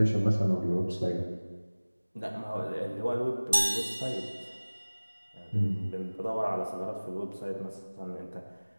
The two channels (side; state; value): both; inverted; correlation -1.00